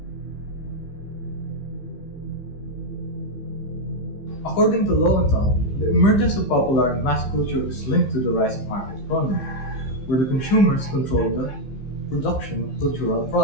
According to Lowenthal, the emergence of popular and mass culture is linked to the rise of market economy, where the consumers control the production of cultural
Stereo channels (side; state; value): right; late; 15 ms